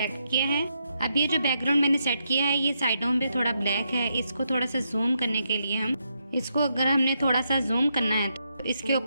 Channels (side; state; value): both; inverted; correlation -0.81